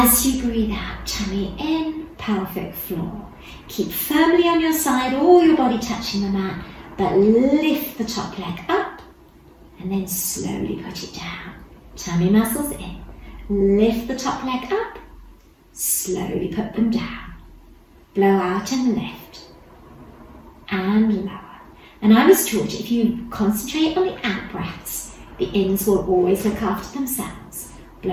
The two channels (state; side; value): identical; both; correlation 1.00